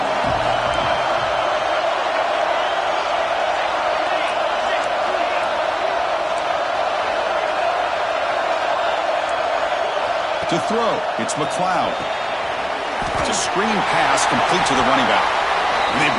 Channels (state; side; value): identical; both; correlation 1.00